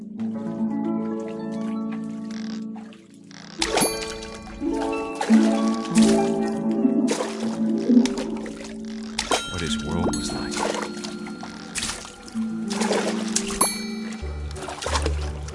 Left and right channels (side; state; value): both; identical; correlation 1.00